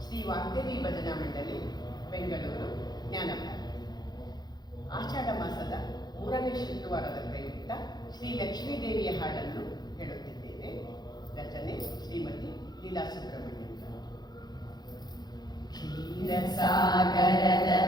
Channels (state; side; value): late; right; 0.20 ms